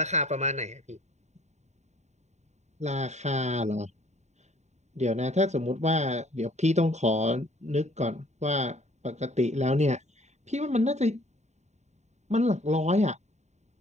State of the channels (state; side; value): late; left; 0.33 ms